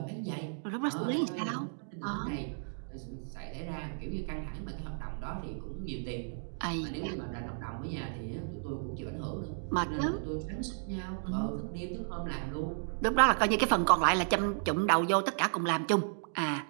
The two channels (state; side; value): silent; left; digital silence